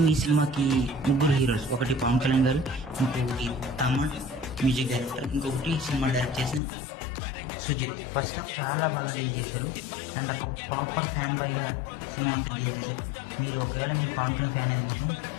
ఈ సినిమాకి ముగ్గురు హీరోస్, ఒకటి పవన్ కళ్యాణ్ గారు, ఇంకొకటి తమన్ మ్యూజిక్ డైరెక్టర్, ఇంకొకటి సినిమా డైరెక్ట్ చేసిన సుజిత్. ఫస్ట్ హాఫ్ చాలా బాగా డీల్ చేశారు అండ్ ఒక ప్రాపర్ ఫ్యాన్ బాయ్గా సినిమా అంతా డీల్ చేశారు. ఒకవేళ మీరు పవన్ కళ్యాణ్ ఫ్యాన్ అయితే మాత్రం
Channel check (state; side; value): drops out; right; at 6.6 s